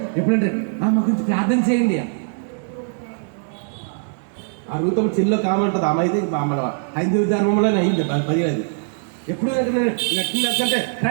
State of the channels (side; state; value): left; silent; digital silence